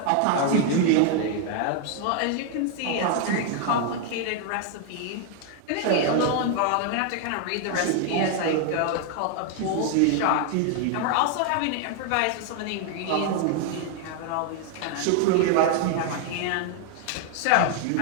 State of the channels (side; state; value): both; different; correlation 0.00